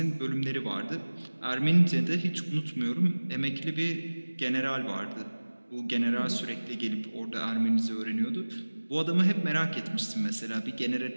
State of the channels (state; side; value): inverted; both; correlation -1.00